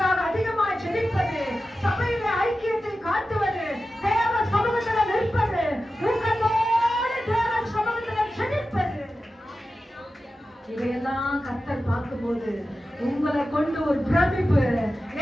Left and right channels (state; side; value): normal; both; correlation 0.93